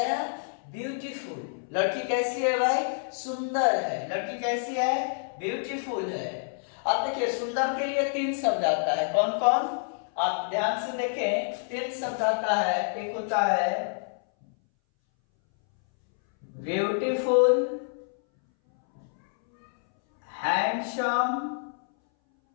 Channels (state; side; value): silent; right; 59 dB below the other